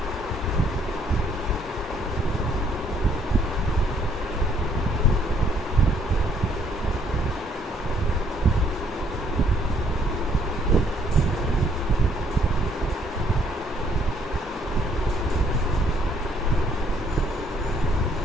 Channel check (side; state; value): both; normal; correlation 0.65